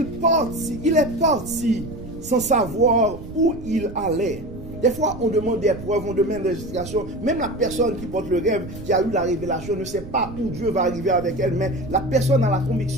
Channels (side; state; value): right; noise; rumble, 13 dB below the sound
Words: parti sans savoir où il allait. Des fois, on demande des preuves, on demande des explications. Même la personne qui porte le rêve, qui a eu la révélation, ne sait pas où Dieu va arriver avec elle. Mais la personne a la